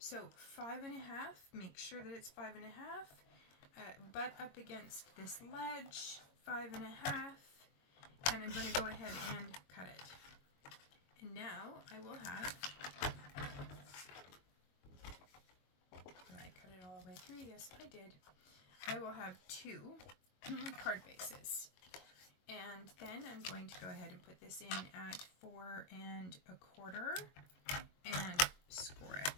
5.5, make sure that it's 5.5. Butt up against this ledge, 5.5. And I'm going to go ahead and cut it. And now I will have, did I cut it all the way through? Yes, I did. I will have 2 card bases. And then I'm going to go ahead and put this in at 4 1/4 and score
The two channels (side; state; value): right; late; 22 ms